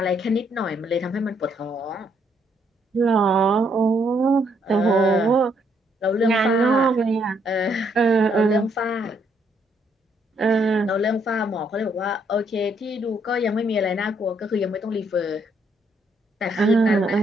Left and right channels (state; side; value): normal; both; correlation 0.71